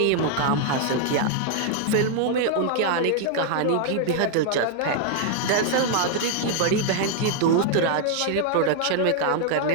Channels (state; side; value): different; both; correlation 0.00